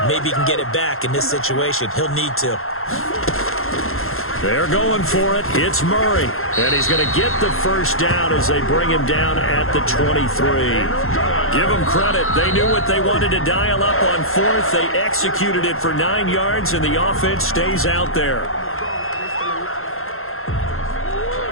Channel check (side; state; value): right; late; 0.61 ms